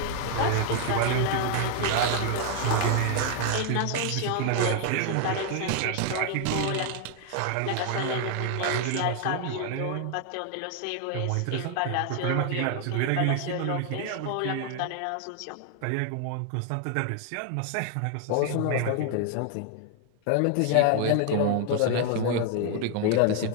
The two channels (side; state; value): both; different; correlation 0.00